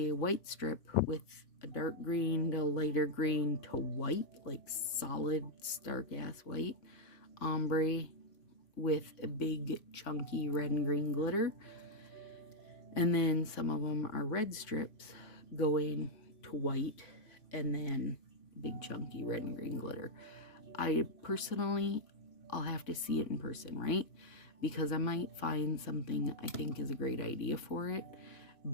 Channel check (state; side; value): late; right; 3.5 ms